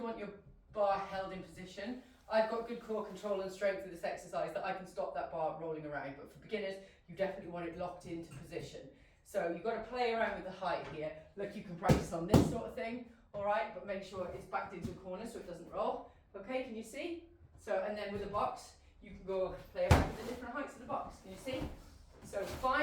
want your bar held in position. I've got good core control and strength with this exercise that I can stop that bar rolling around, but for beginners, you definitely want it locked into position. So you've got to play around with the height here. Look, you can practice on this sort of thing, all right, but make sure it's backed into a corner so it doesn't roll. Okay, can you see? So, and then with the box, you can go play around with the different heights of the box. Can you see? So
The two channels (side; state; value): both; identical; correlation 1.00